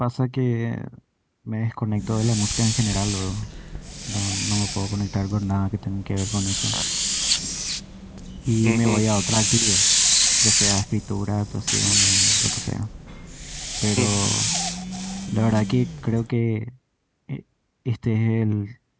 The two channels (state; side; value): identical; both; correlation 1.00